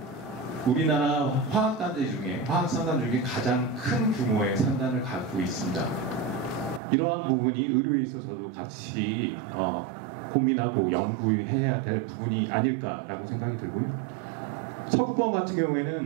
우리나라 화학산단 중에 가장 큰 규모의 산단을 갖고 있습니다. 이러한 부분이 의료에 있어서도 같이 고민하고 연구해야 될 부분이 아닐까라고 생각이 들고요. 서부권 같은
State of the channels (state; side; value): drops out; left; at 6.8 s